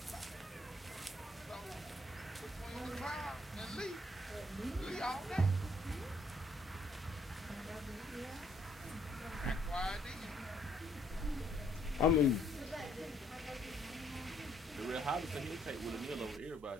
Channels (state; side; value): normal; both; correlation 0.67